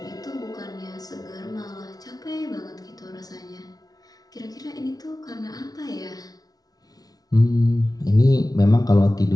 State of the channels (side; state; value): right; late; 0.18 ms